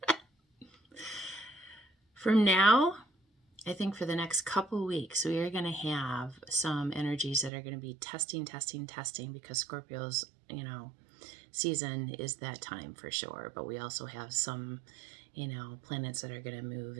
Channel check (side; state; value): left; drops out; at 7.5 s